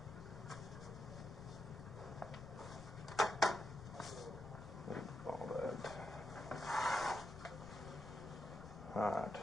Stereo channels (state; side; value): noise; left; rumble, 13 dB below the sound